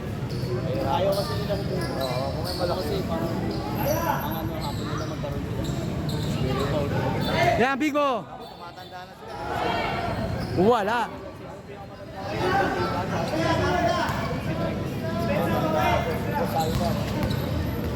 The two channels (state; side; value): identical; both; correlation 1.00